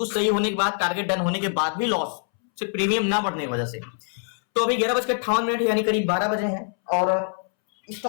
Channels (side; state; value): right; silent; 62 dB below the other